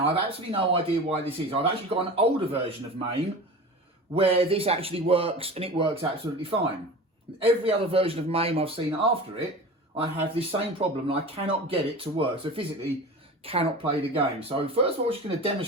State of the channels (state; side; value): normal; both; correlation 0.34